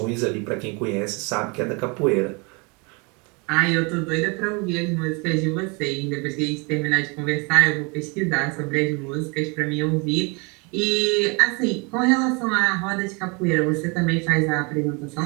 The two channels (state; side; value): quieter; left; 30.6 dB